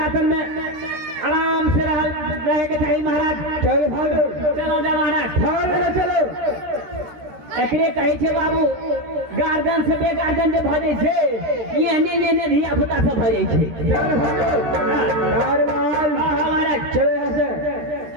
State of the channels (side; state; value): left; late; 13 ms